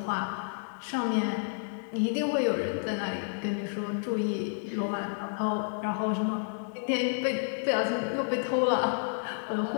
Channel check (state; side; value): silent; right; digital silence